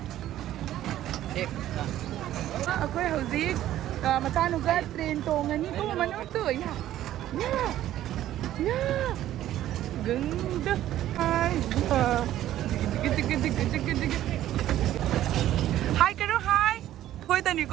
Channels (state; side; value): quieter; left; 13.0 dB